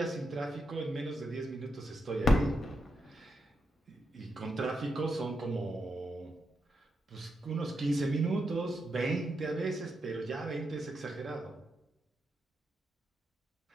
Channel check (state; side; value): normal; both; correlation 0.84